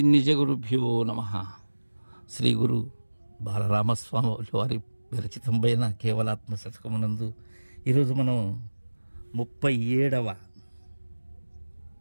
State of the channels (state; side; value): inverted; both; correlation -1.00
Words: నిజగురుభ్యో నమః. శ్రీ గురు బాలరామస్వామి వారి విరచితంపైన కేవలాత్మ శతకమునందు ఈరోజు మనం 37వ